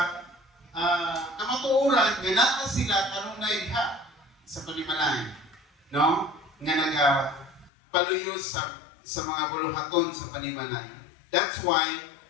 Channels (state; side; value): drops out; right; at 7.7 s